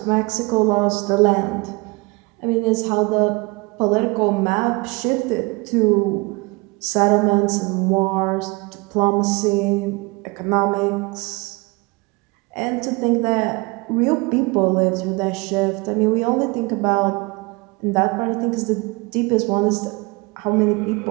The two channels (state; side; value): quieter; left; 26.4 dB